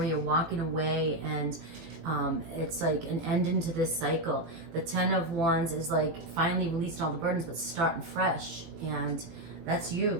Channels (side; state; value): left; late; 18 ms